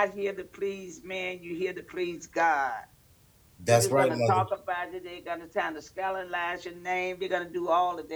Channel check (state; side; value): identical; both; correlation 1.00